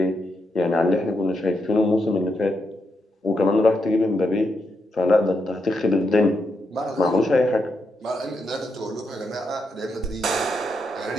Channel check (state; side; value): normal; both; correlation 0.82